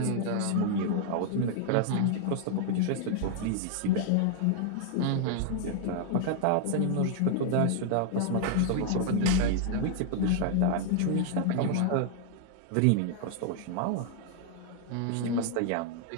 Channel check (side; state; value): both; different; correlation -0.01